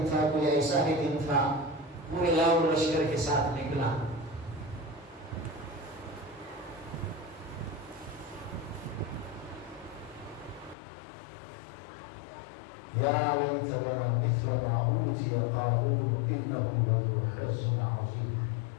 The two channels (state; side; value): drops out; right; at 10.8 s